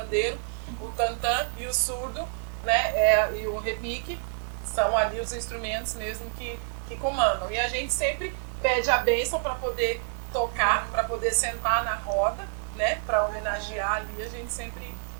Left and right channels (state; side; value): silent; left; digital silence